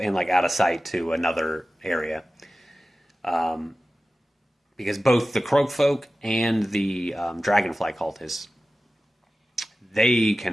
like out of sight to another area. because both the Croakfolk and the Dragonfly cultists, they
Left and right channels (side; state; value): both; normal; correlation 0.95